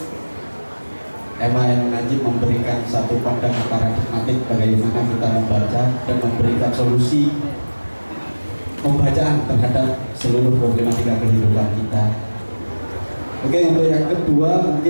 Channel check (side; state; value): both; inverted; correlation -1.00